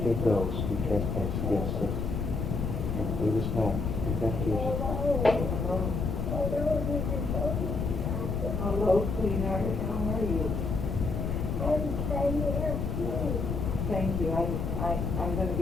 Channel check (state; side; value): noise; left; rumble, 2 dB below the sound